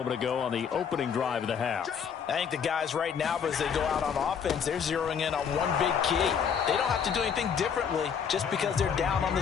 ago on the opening drive of the half. I think the guys right now, as they go out on offense, they're zeroing in on one big key. They don't have to do anything differently just because they're down on the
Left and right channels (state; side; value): quieter; right; 7.2 dB